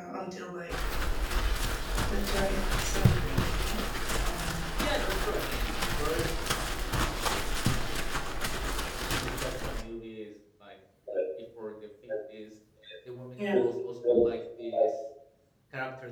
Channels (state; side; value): identical; both; correlation 1.00